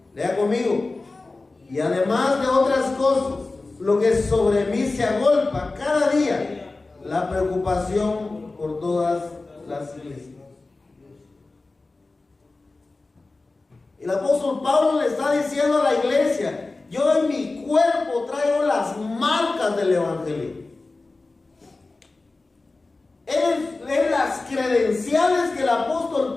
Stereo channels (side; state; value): right; quieter; 3.4 dB